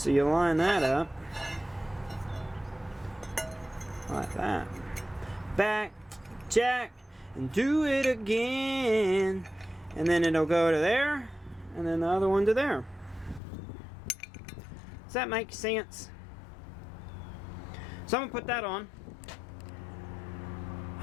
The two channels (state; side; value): drops out; right; at 13.4 s